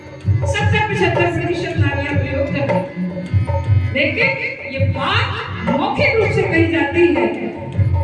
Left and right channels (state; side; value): identical; both; correlation 1.00